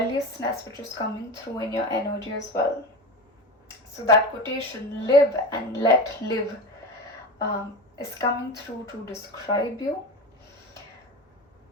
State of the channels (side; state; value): both; normal; correlation 0.25